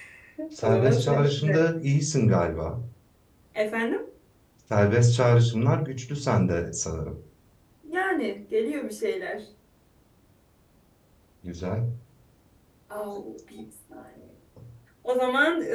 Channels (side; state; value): both; identical; correlation 1.00